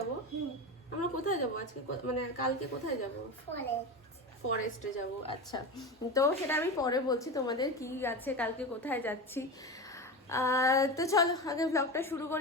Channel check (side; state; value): both; normal; correlation 0.23